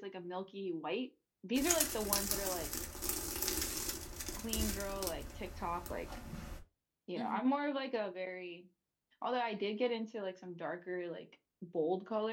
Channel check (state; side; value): identical; both; correlation 1.00